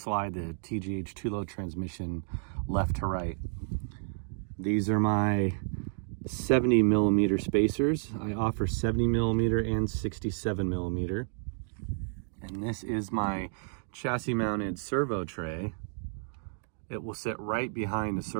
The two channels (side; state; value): left; silent; digital silence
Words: the TGH 2-low transmission left to right. These are my 70 millimeter spacers. I offer 70 millimeter and 67 millimeter. And this is my chassis mounted servo tray. It will sit right behind the